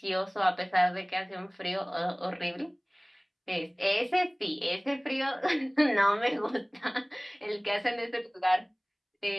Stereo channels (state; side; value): identical; both; correlation 1.00